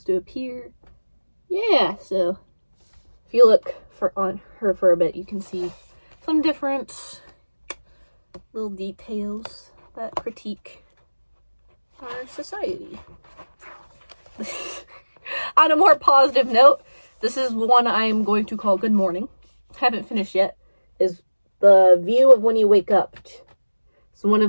to appear. Yeah, so if you look on her for a bit, you can see some different little details that critique our society. On a more positive note, this is one I am going to call Good Morning. Haven't finished yet. Is the view of when you wake up. So one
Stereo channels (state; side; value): inverted; both; correlation -1.00